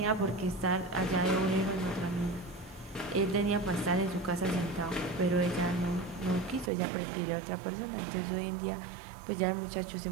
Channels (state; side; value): drops out; left; at 6.7 s